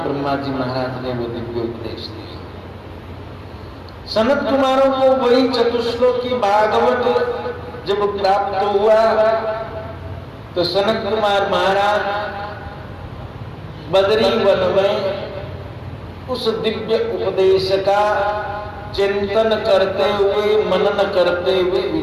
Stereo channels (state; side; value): identical; both; correlation 1.00